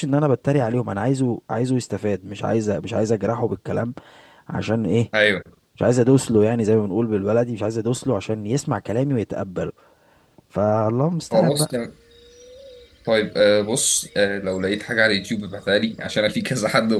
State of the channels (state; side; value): identical; both; correlation 1.00